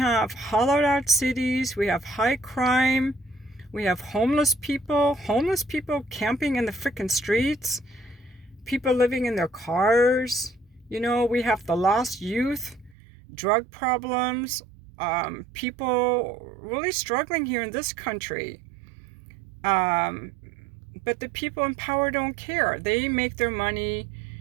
hollowed out cities, we have high crime, we have homeless people camping in the frickin' streets, people living in their cars, we have the lost youth, drug problems, people really struggling here in this country. But the people in power don't care. They make their money,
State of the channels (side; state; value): left; drops out; at 13.0 s